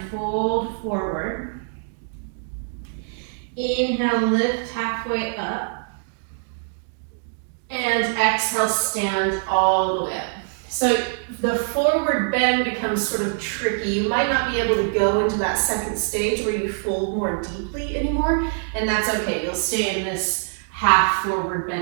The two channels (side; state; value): left; silent; digital silence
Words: fold forward. Inhale, lift halfway up. And exhale, stand all the way up. So the forward bend becomes sort of tricky. You might not be able to go into that second stage where you fold more deeply anymore, and that's okay. You'll stay in this half forward